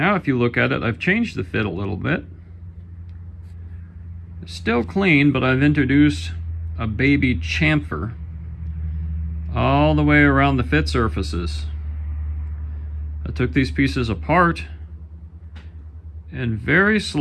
if you look at it, I've changed the fit a little bit. It's still clean, but I've introduced a baby chamfer all the way around the fit surfaces. I took these pieces apart and very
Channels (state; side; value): identical; both; correlation 1.00